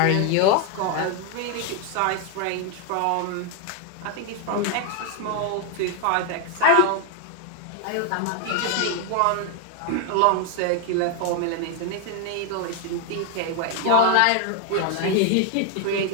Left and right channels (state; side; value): different; both; correlation 0.00